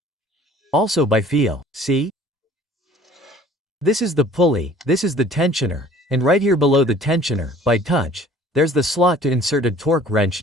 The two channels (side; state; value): both; normal; correlation 0.51